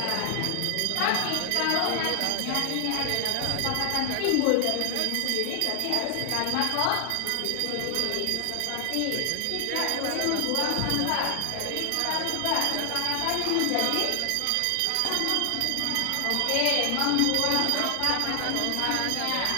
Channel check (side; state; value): both; different; correlation 0.00